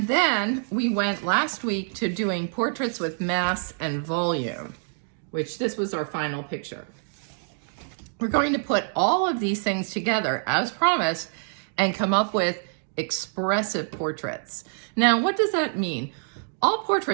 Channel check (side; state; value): left; silent; digital silence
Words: then we went last week to doing portraits with mass and volume, which this was our final picture. We're going to put all of these things together as promised and come up with expressive portraits. Now, what does that mean? All